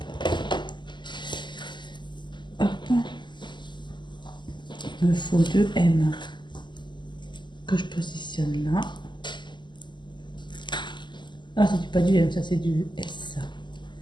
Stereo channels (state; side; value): late; right; 0.22 ms